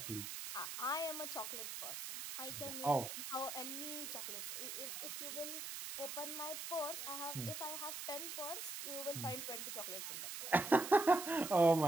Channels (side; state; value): right; noise; hiss, 6 dB below the sound